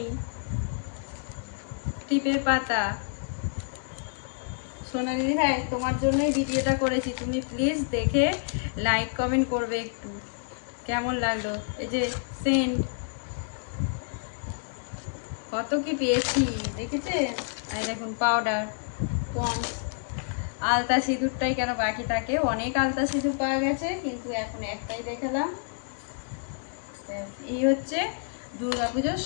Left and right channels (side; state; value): right; silent; digital silence